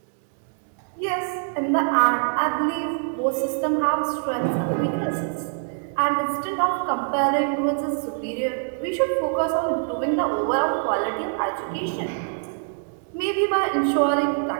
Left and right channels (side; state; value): left; silent; digital silence